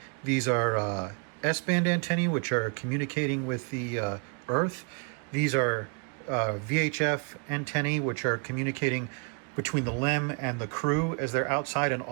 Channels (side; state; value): left; quieter; 39.2 dB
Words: These are S-band antennae, which are communicating with the Earth. These are VHF antennae, which are communicating between the LEM and the crew as they're outside, and